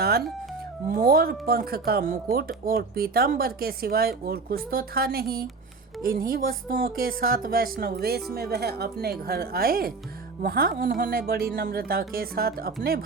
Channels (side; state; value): left; quieter; 4.2 dB